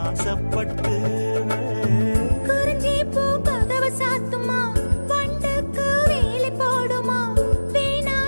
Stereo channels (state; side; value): inverted; both; correlation -1.00